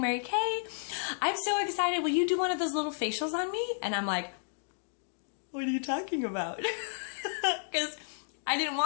Kay. I'm so excited. Will you do one of those little facials on me?" And I'm like, "What are you talking about?" Because I didn't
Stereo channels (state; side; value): silent; right; digital silence